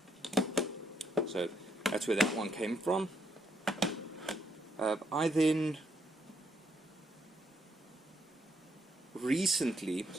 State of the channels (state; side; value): normal; both; correlation 0.75